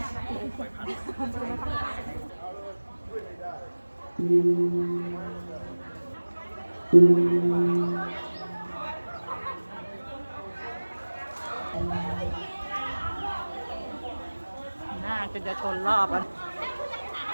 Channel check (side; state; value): both; inverted; correlation -1.00